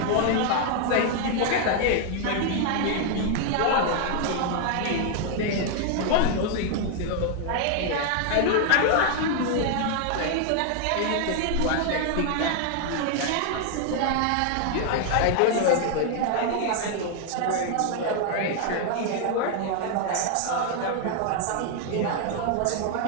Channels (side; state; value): both; different; correlation 0.00